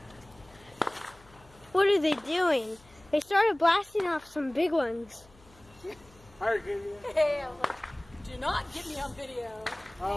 What are they doing? They started blasting off some big ones. Hey, I'm like, do not get me on video.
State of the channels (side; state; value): left; noise; hum, 27 dB below the sound